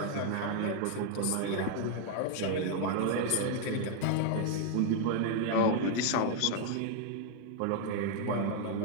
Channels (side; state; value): both; different; correlation 0.00